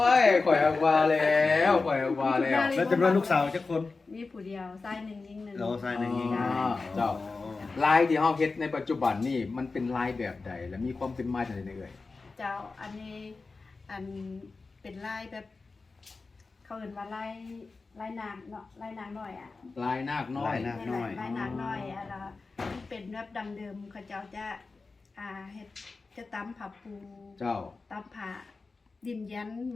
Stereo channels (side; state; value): right; quieter; 4.0 dB